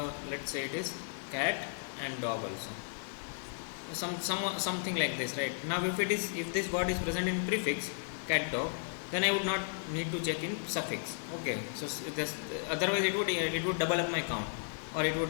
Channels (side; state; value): right; silent; digital silence